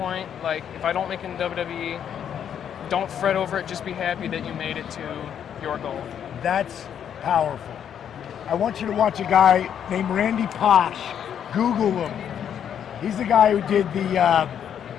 like if I don't make it in WWE, don't fret over it, just be happy that you made it to your goal. That's Powerful. I want you to watch a guy named Randy Posh. Google him. He's the guy who did the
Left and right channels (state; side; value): quieter; right; 8.9 dB